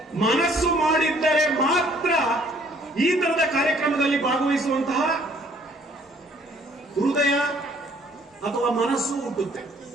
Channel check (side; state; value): both; normal; correlation 0.60